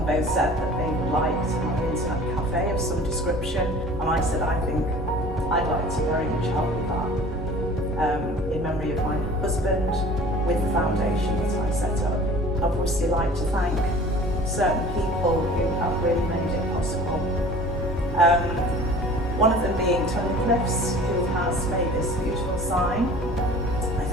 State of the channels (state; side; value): normal; both; correlation 0.45